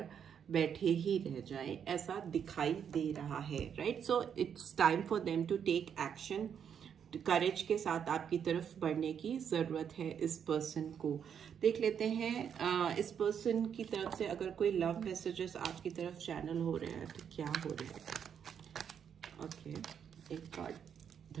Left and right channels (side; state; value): left; quieter; 8.0 dB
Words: बैठे ही रह जाए, ऐसा दिखाई दे रहा है, right. So it's time for them to take action. Courage के साथ आपकी तरफ बढ़ने की जरूरत है इस पर्सन को. देख लेते हैं इस पर्सन की तरफ से अगर कोई लव मैसेजेस आपकी तरफ चैनल हो रहे हैं तो क्या हो रहे हैं. ओके, एक कार्ड